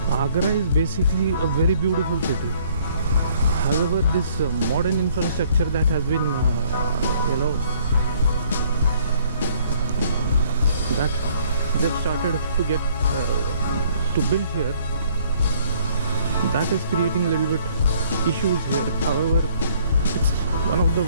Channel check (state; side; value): inverted; both; correlation -0.61